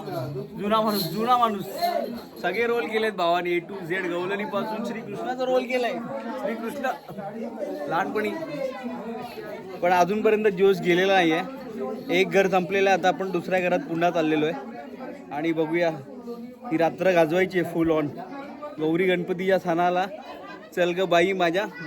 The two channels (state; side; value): identical; both; correlation 1.00